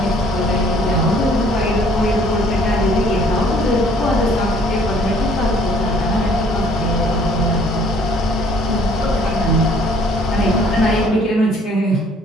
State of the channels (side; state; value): both; normal; correlation 0.59